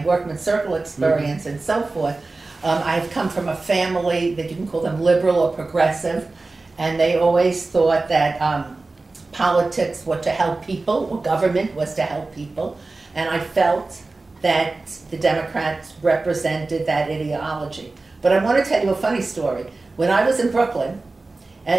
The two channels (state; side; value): quieter; left; 3.4 dB